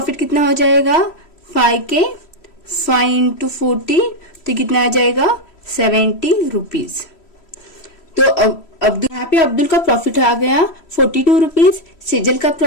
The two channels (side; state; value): right; late; 3.1 ms